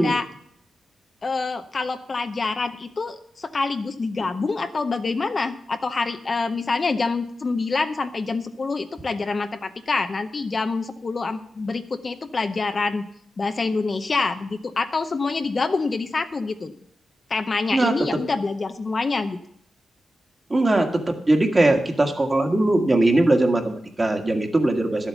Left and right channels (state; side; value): normal; both; correlation 0.92